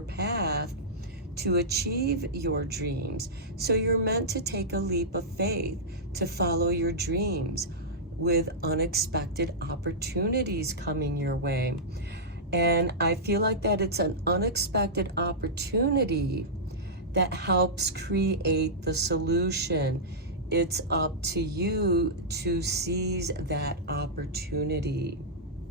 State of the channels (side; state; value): both; normal; correlation -0.12